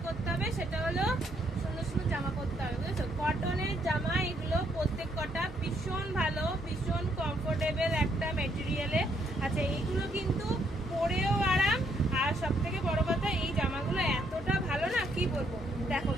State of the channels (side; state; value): both; normal; correlation 0.72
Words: করতে হবে সেটা হলো সুন্দর সুন্দর জামা করতে হবে, বুঝেছো? কটনের জামা এগুলো প্রত্যেক কটা ভীষণ ভালো, ভীষণ কমফোর্টেবল একটা মেটেরিয়ালে। আচ্ছা, এইগুলো কিন্তু পরেও আরাম, আর সব থেকে বড় কথা এই জামাগুলো এতটা ভালো না কি বলবো। দেখো,